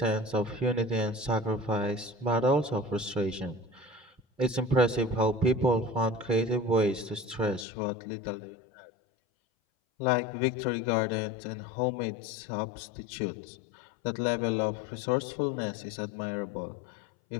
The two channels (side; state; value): right; drops out; at 7.7 s